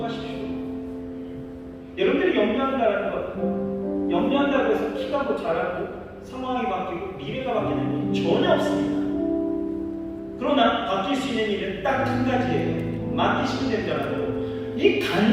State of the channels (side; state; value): both; identical; correlation 1.00